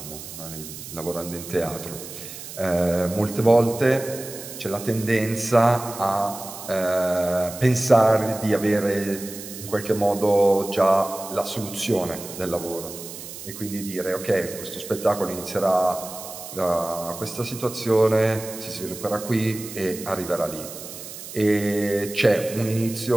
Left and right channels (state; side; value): noise; right; hiss, 12 dB below the sound